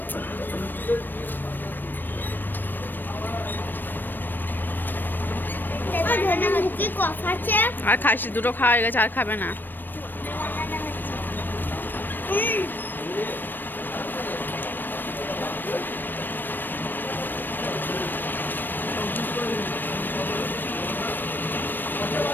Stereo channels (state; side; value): late; right; 0.093 ms